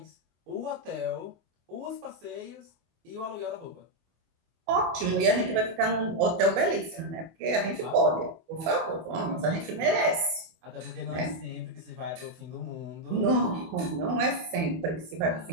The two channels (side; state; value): left; late; 24 ms